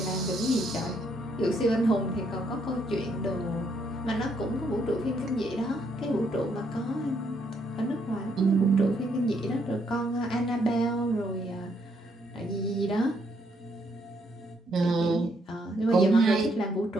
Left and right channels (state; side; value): normal; both; correlation 0.73